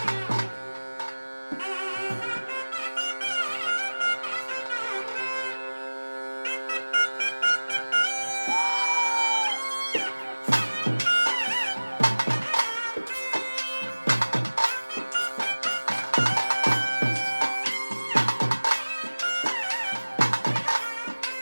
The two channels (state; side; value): inverted; both; correlation -1.00